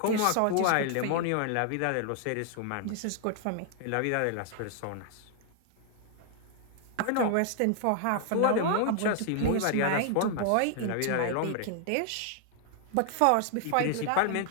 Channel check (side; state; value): both; different; correlation 0.00